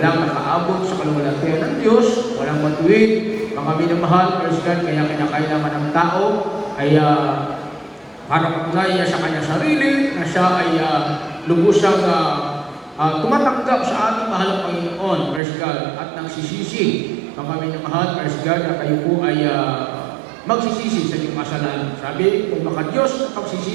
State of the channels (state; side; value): drops out; left; at 15.4 s